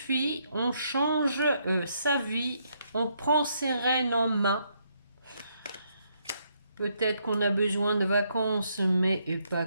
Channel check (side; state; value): both; inverted; correlation -0.74